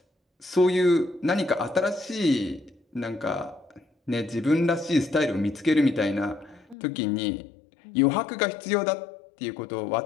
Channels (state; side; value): drops out; right; at 6.8 s